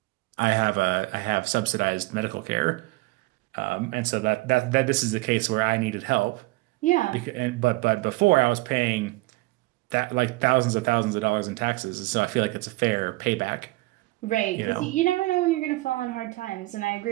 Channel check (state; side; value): quieter; left; 21.5 dB